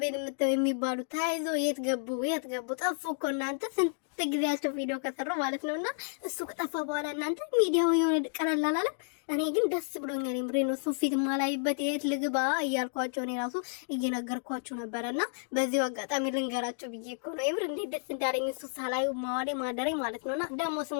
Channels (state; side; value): silent; right; digital silence